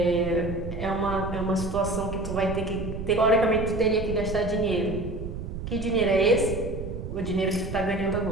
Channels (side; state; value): right; noise; rumble, 7 dB below the sound